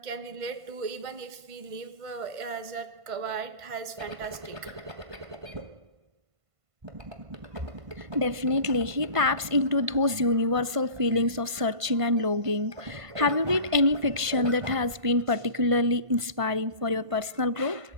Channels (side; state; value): left; late; 1.5 ms